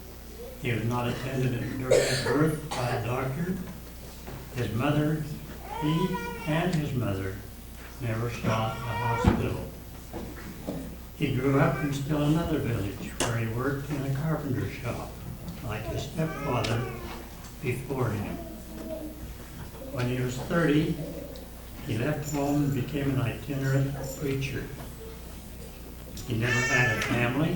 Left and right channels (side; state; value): both; identical; correlation 1.00